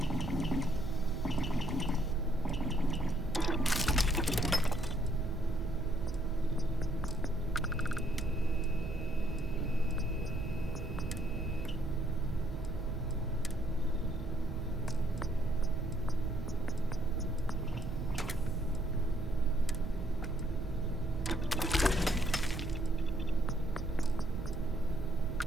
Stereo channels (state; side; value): normal; both; correlation 0.70